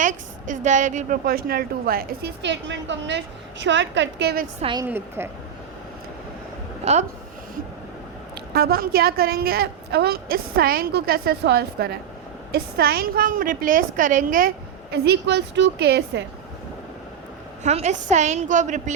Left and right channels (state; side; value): quieter; left; 8.3 dB